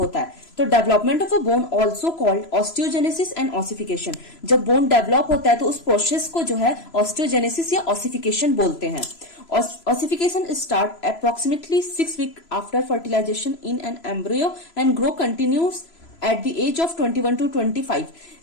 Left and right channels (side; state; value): right; late; 3.0 ms